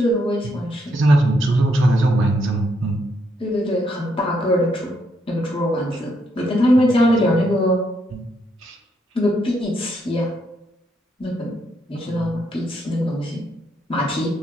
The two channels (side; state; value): both; normal; correlation 0.76